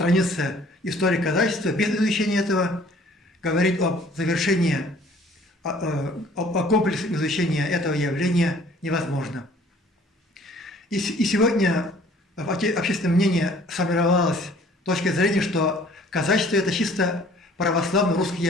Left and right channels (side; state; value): both; normal; correlation 0.55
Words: истории казачества. Без изучения этого говорить об завершении, о комплексном изучении этого явления невозможно. И сегодня в общественном мнении сформировалась точка зрения, что казачество – это чисто православно-русское